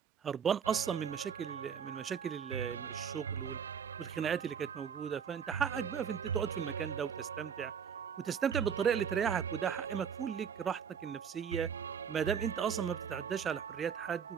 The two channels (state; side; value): quieter; left; 7.3 dB